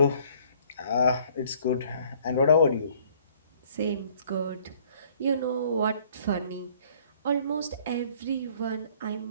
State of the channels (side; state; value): both; inverted; correlation -0.58